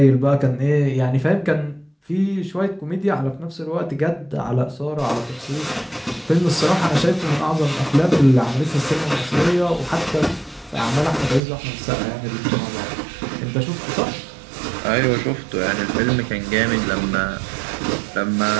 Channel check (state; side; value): drops out; left; at 11.4 s